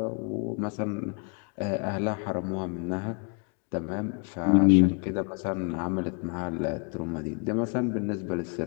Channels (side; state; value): right; quieter; 37.7 dB